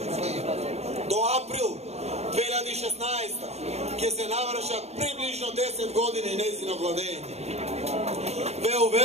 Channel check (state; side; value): late; left; 0.31 ms